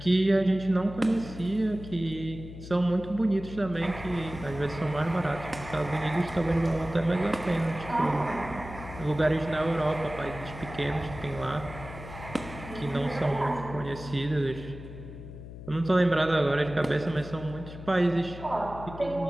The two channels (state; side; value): noise; left; hum, 13 dB below the sound